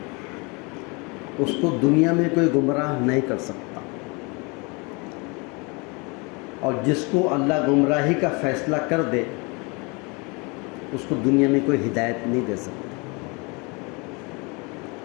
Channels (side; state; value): right; quieter; 29.6 dB